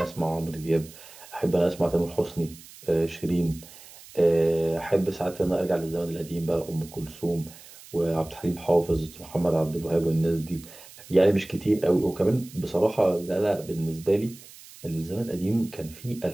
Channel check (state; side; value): noise; right; hiss, 19 dB below the sound